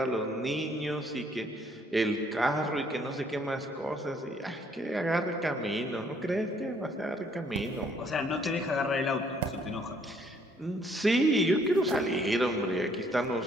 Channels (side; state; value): both; normal; correlation 0.65